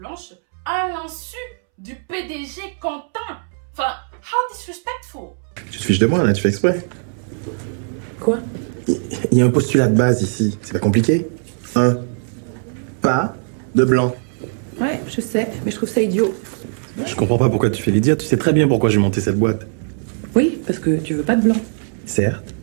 à l'insu du PDG Quentin. Enfin, how disrespectful. Tu te fiches de moi là, tu fais exprès. Quoi? Il y a un postulat de base ici, c'est pas compliqué. Pas de blanc. Ouais, je sais, mais je trouve ça idiot. Je comprends pas pourquoi tu fais l'idiot, tu sais très bien pourquoi j'ai monté cette boîte. Oui, parce que tu veux pas de blanc. Certes,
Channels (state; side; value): silent; left; 66 dB below the other